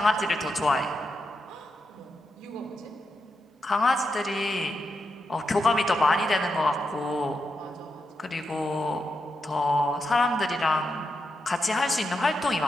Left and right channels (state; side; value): normal; both; correlation 0.85